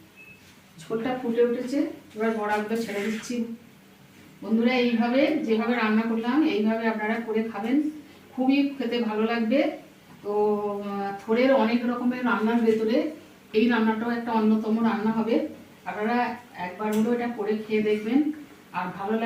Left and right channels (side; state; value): both; identical; correlation 1.00